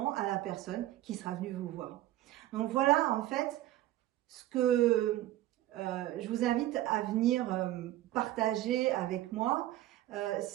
à la personne qui sera venue vous voir. Donc voilà, en fait, ce que je vous invite à venir partager avec moi,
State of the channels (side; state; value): left; quieter; 14.8 dB